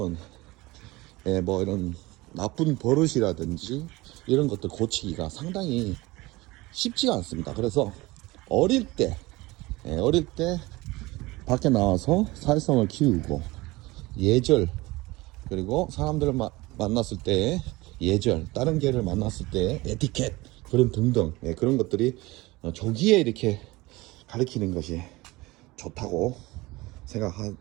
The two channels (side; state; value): left; quieter; 21.1 dB